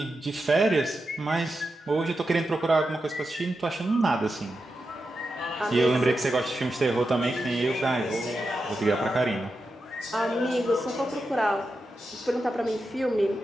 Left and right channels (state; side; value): normal; both; correlation 0.89